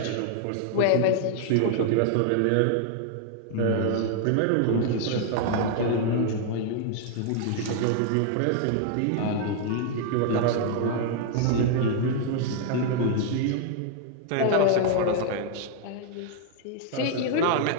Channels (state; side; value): different; both; correlation 0.00